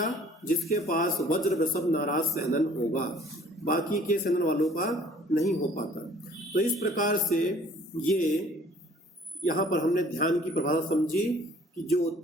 जिसके पास वज्र वृषभ नाराज सहनन होगा, बाकी के सहनन वालों का नहीं हो पाता। तो इस प्रकार से ये यहाँ पर हमने ध्यान की परिभाषा समझी कि जो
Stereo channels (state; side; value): normal; both; correlation 0.54